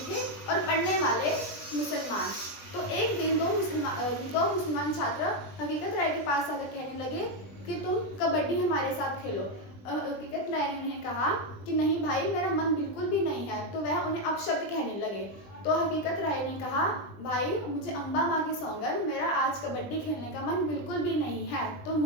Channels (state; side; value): late; right; 20 ms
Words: थे और पढ़ने वाले मुसलमान। तो एक दिन दो मुसलमान छात्र हकीकत राय के पास आकर कहने लगे कि तुम कबड्डी हमारे साथ खेलो। हकीकत राय ने कहा कि नहीं भाई, मेरा मन बिल्कुल भी नहीं है। तो वह उन्हें अपशब्द कहने लगे। तो हकीकत राय ने कहा, भाई मुझे अम्बा माँ की सौगंध, मेरा आज कबड्डी खेलने का मन बिल्कुल भी नहीं है। तो